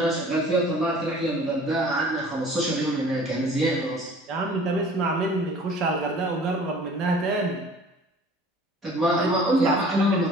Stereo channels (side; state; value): both; normal; correlation 0.48